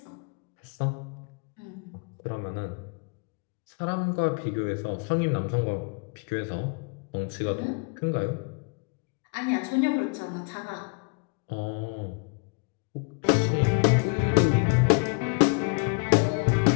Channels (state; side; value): quieter; right; 34.5 dB